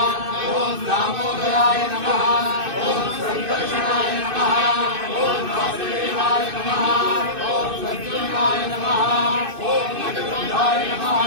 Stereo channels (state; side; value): late; left; 2.6 ms